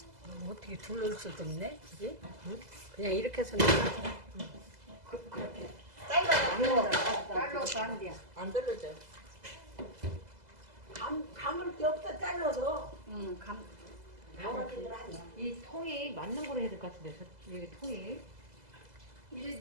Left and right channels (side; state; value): left; late; 2.0 ms